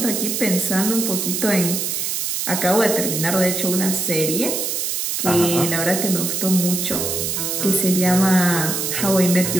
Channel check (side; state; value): right; noise; hiss, 1 dB below the sound